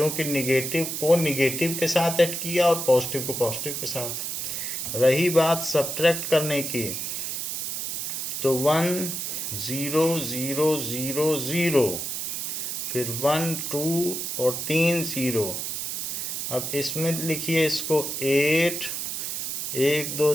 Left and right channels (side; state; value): right; noise; hiss, 3 dB below the sound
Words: निगेटिव को निगेटिव के साथ ऐड किया और पॉजिटिव को पॉजिटिव के साथ। रही बात सब्ट्रैक्ट करने की, तो 1 0 0 0 0, फिर 1 2 और 3 ज़ीरो। अब इसमें लिखिए इसको 8 1 2